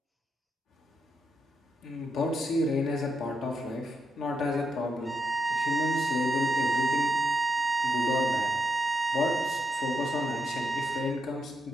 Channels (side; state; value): both; normal; correlation 0.81